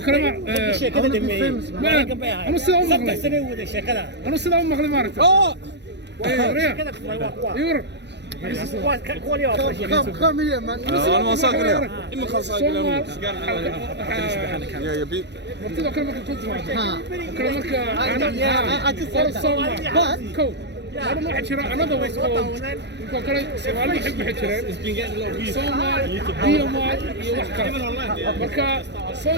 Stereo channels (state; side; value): late; left; 0.50 ms